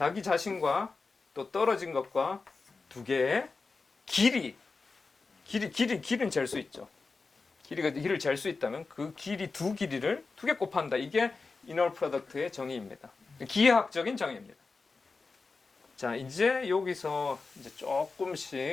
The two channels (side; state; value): right; quieter; 4.2 dB